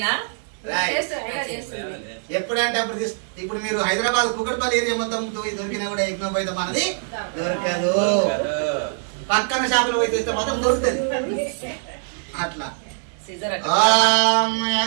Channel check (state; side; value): silent; left; digital silence